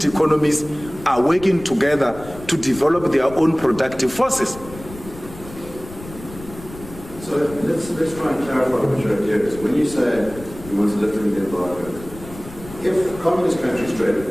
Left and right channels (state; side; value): noise; left; rumble, 16 dB below the sound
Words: economies are working together to develop their own productive forces. So let's try and clarify what your idea is. When you say you want to lift the embargo, if communist countries trade